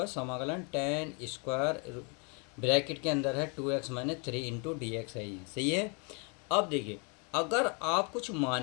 समाकलन tan स्क्वायर ब्रैकेट के अंदर है 2x minus 3 into D x है, ये सही है। अब देखिए अगर आप कुछ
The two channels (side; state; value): right; quieter; 34.7 dB